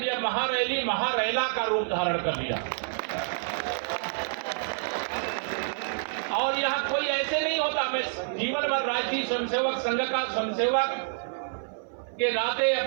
यह महारैली महारैला का रूप धारण कर लिया। और यहाँ कोई ऐसे नहीं होता, मैं जीवन भर राष्ट्रीय स्वयंसेवक संघ का स्वयंसेवक के नाते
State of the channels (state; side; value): silent; left; 57 dB below the other